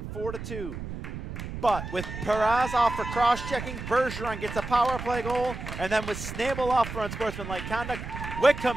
4-2. But with Perez off for cross-checking, Bergeron gets a power play goal, and then with Snabel off for unsportsmanlike conduct, Wickham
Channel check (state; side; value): noise; right; rumble, 8 dB below the sound